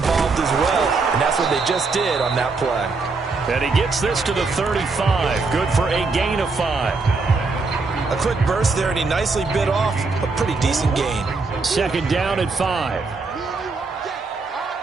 as well, and that's what they just did on that play. And he gets this to the 35. Good for a gain of 5. A quick burst there, and he nicely bit off a pretty decent gain. 2nd down at 5.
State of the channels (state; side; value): quieter; left; 4.1 dB